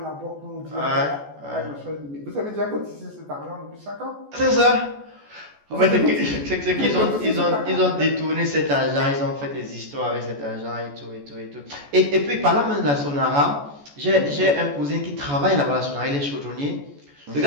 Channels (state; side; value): late; left; 14 ms